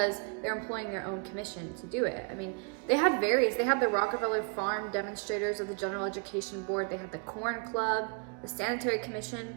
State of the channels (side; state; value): left; quieter; 35.0 dB